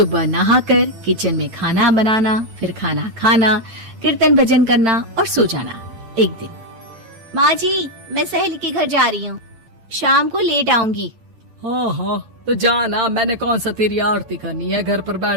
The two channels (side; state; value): left; late; 8.9 ms